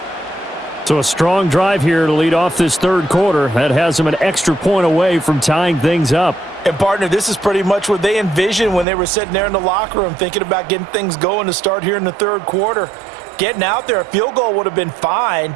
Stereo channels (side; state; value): left; drops out; at 8.8 s